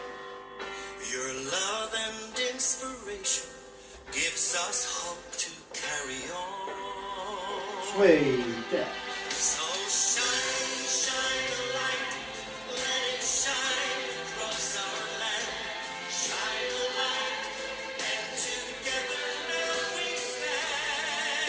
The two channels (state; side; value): identical; both; correlation 1.00